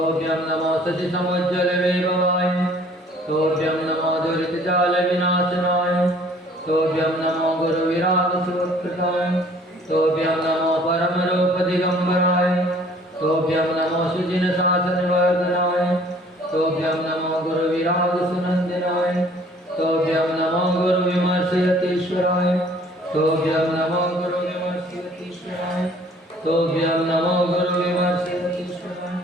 नमो शशि समुज्ज्वल वैभवाय तोभ्यं नमो दुरित जाल विनाशनाय तोभ्यं नमो गुरु विराग सुकृताय तोभ्यं नमो परम रूप दिगंबराय तोभ्यं नमो सुजिन शासन वर्धनाय तोभ्यं नमो गुरु विराग सुनंदनाय तोभ्यं नमो गुरु विमर्शयतीश्वराय तोभ्यं नमो गुरु विमर्शयतीश्वराय तोभ्यं नमो गुरु विमर्शयतीश्वराय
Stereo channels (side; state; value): both; normal; correlation 0.55